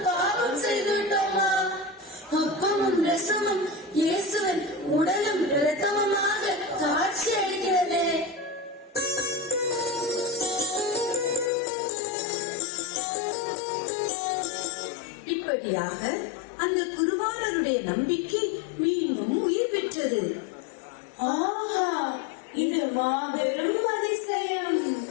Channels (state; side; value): drops out; right; at 11.5 s